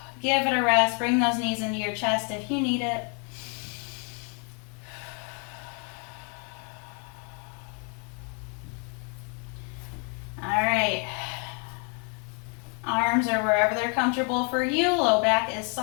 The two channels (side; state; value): right; quieter; 38.3 dB